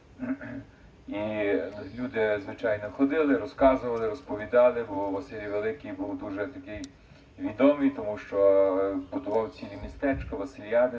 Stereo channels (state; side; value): identical; both; correlation 1.00